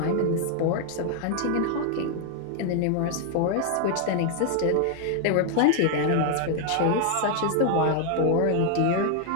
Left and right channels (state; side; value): different; both; correlation 0.00